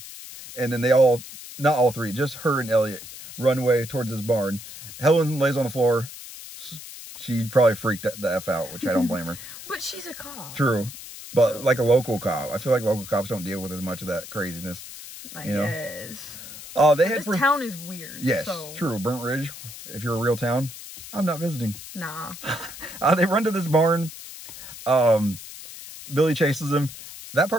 And then they all, not all three, just her and Elliot run away towards his barn. Helen lays on the floor. She probably freaked the F out, which I don't blame her. But she's a cop. True. But like a local cop. I feel like local cops don't deal with as much of that craziness. I guess. This town is weird. Yes, so. True. Burnt Ridge, if you're a real town, I'm not visiting. Nah. They run to this barn. Billy chases them. That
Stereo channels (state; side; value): noise; left; hiss, 13 dB below the sound